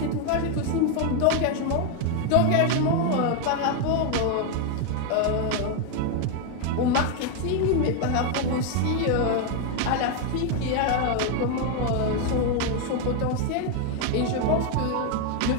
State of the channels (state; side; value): different; both; correlation 0.01